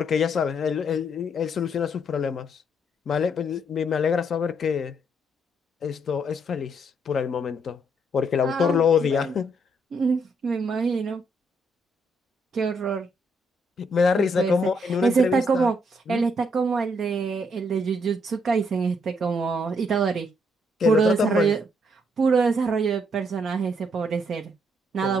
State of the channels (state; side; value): normal; both; correlation 0.73